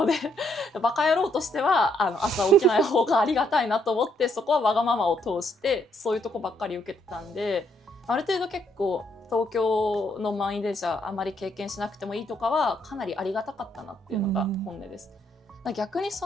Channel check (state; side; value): normal; both; correlation 0.72